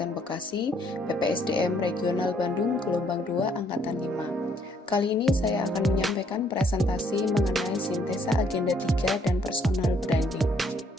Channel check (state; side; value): normal; both; correlation 0.67